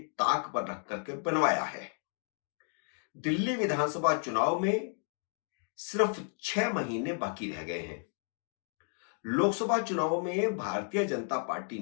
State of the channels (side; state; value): right; silent; 56 dB below the other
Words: पर रख करके बनवाया है। दिल्ली विधानसभा चुनाव में सिर्फ 6 महीने बाकी रह गए हैं। लोकसभा चुनाव में भारतीय जनता पार्टी